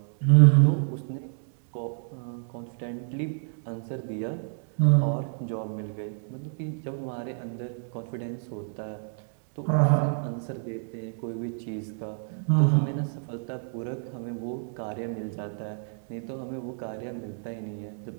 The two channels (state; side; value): silent; left; digital silence